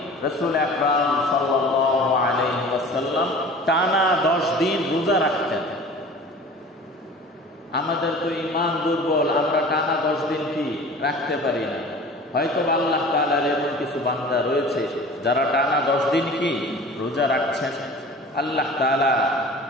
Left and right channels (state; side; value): normal; both; correlation 0.41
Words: রাসূল আকরাম সাল্লাল্লাহু আলাইহি ওয়াসাল্লাম টানা 10 দিন রোজা রাখতেন। আমাদের তো ঈমান দুর্বল, আমরা টানা 10 দিন কি রাখতে পারি না। হয়তো আল্লাহ তাআলার এমন কিছু বান্দা রয়েছে যারা টানা 10 দিন কি রোজা রাখছেন। আল্লাহ তাআলা